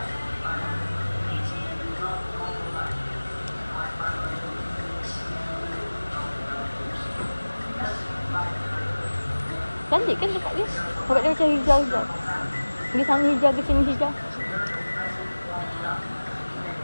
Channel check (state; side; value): inverted; both; correlation -1.00